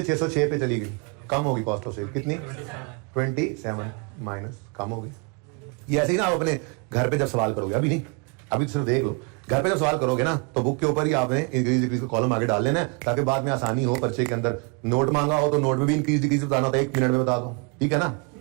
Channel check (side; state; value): left; quieter; 32.9 dB